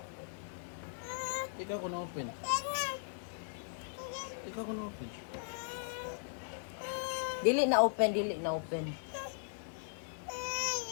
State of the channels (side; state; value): right; silent; digital silence